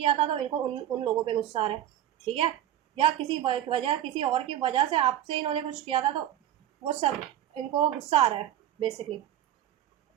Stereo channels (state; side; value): quieter; left; 11.7 dB